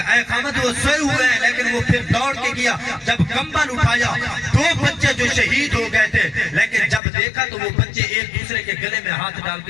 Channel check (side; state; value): right; drops out; at 7.0 s